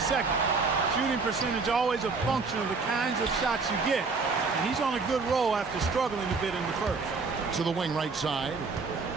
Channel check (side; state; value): left; quieter; 4.4 dB